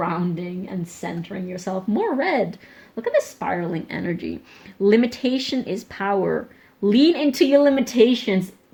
and centering yourself. More red. Look at the spiraling energy. Limitation is power. Lean into your limitations.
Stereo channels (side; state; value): both; identical; correlation 1.00